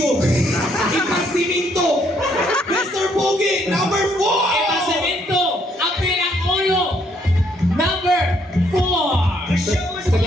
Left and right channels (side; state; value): both; normal; correlation 0.69